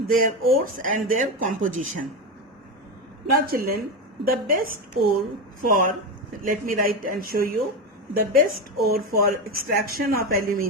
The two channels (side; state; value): both; normal; correlation 0.15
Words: ores and their composition. Now children, the best ore for, let me write and show you, the best ore for extraction of